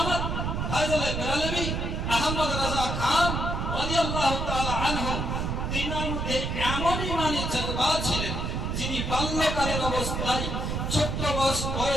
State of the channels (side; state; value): right; noise; rumble, 1 dB below the sound